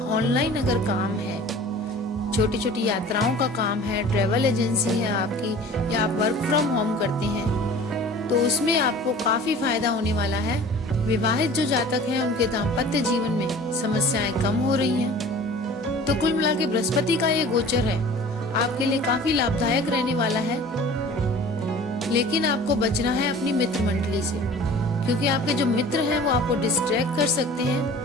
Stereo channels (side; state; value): both; normal; correlation 0.43